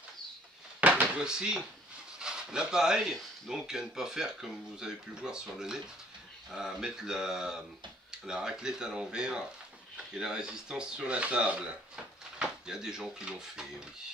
Et voici l'appareil, donc à ne pas faire comme vous avez pu le voir sur le net, à mettre la raclette à l'envers et la résistance sur la table. Il y a des gens qui l'ont fait, oui.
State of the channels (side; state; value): both; normal; correlation 0.59